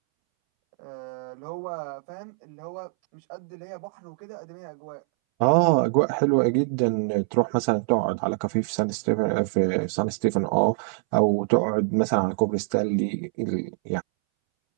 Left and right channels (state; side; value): silent; left; 62 dB below the other